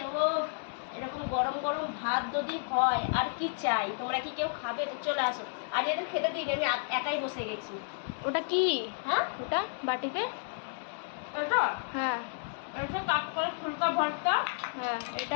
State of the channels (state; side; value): silent; right; digital silence